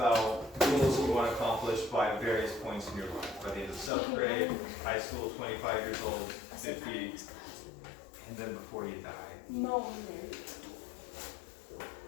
goals that you want to accomplish by various points in your life, by the end of 7th grade, high school, 25 years old, 50, and then before you die. No,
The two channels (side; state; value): right; drops out; at 3.9 s